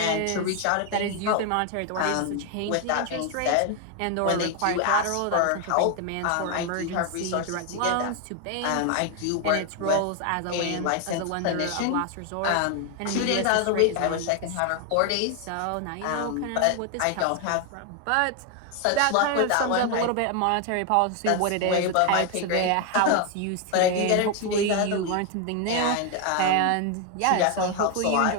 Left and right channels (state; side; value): different; both; correlation 0.01